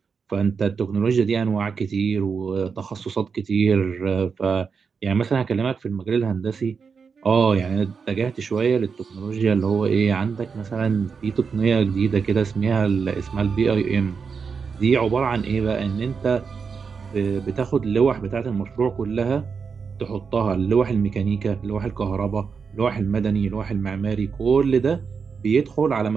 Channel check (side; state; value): left; quieter; 5.7 dB